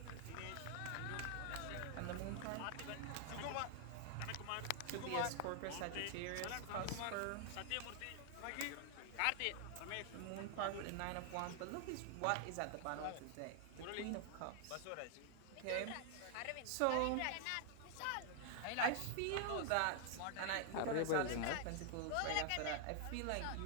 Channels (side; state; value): both; different; correlation 0.00